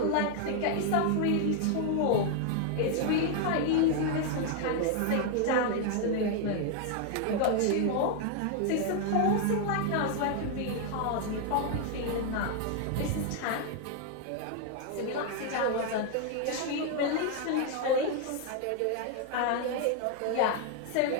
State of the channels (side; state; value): both; different; correlation 0.00